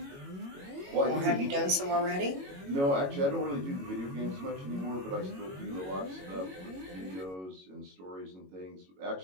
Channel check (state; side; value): late; left; 21 ms